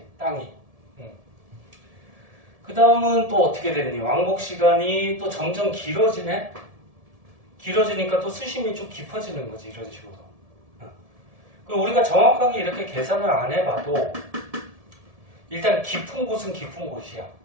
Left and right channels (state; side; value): late; left; 1.7 ms